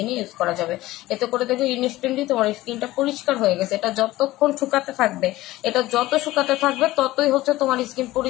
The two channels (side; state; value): right; quieter; 17.2 dB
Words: ইউজ করা যাবে। এতে করে দেখবে ইনস্ট্যান্টলি তোমার স্কিনটা পরিষ্কার হয়ে গেছে। এটা যতক্ষণ শুকাতে থাকবে, এটা যত শুকাতে থাকবে ততই হচ্ছে তোমার স্কিন